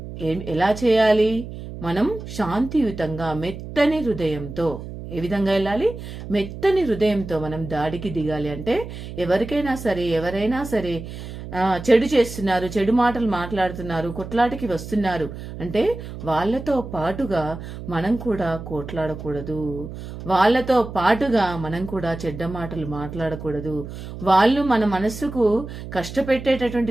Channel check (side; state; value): right; noise; hum, 11 dB below the sound